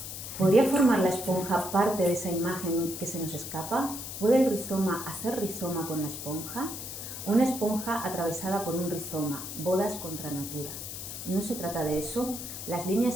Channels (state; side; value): noise; left; hiss, 8 dB below the sound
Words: ¿podría formar la esponja parte de esa imagen que se nos escapa? ¿Puede el rizoma hacer rizoma con la esponja? Una esponja atravesada por un rizoma, bodas contra natura. No se trata de eso. Las